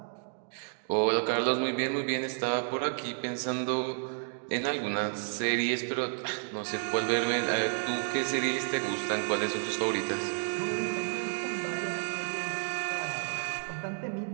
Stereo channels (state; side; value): silent; left; digital silence